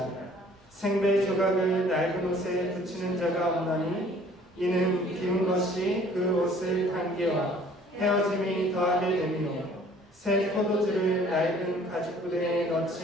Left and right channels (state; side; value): normal; both; correlation 0.54